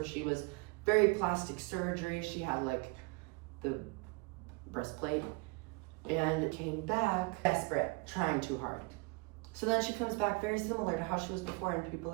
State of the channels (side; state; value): left; quieter; 26.9 dB